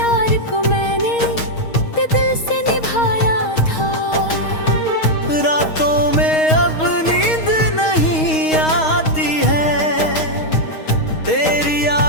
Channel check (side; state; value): right; late; 6.4 ms